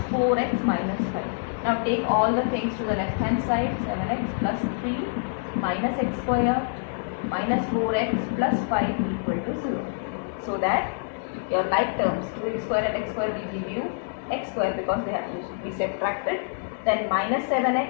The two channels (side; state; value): right; silent; 59 dB below the other